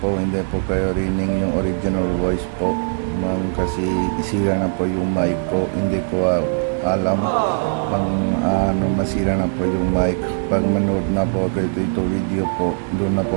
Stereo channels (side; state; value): left; silent; 66 dB below the other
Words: hindi po kayo rinig yung original voice po kasi isira na po yung mic ko, hindi ko alam masira na po yung mic. Pag manood na po ako ito video po, doon na